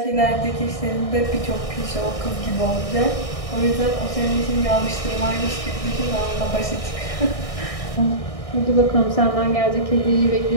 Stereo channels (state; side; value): late; right; 1.6 ms